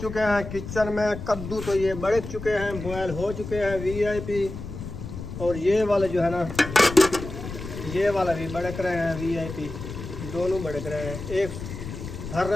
हैं किचन में। कद्दू तो ये बड़क चुके हैं बॉयल हो चुके हैं VIP। और ये वाले जो है ना ये वाला भी बड़क रहे हैं VIP। दोनों बड़क रहे हैं। एक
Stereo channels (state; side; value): noise; left; rumble, 9 dB below the sound